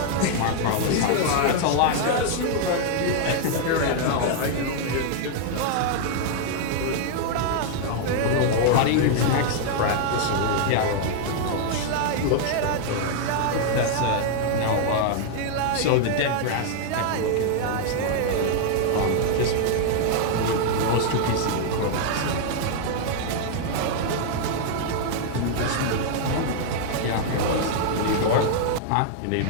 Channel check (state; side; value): different; both; correlation 0.00